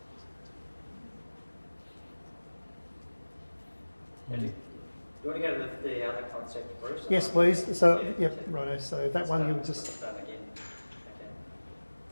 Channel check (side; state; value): both; inverted; correlation -1.00